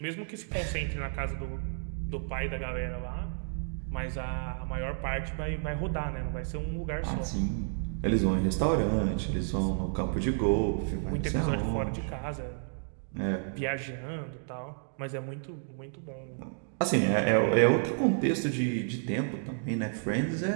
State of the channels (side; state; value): left; silent; digital silence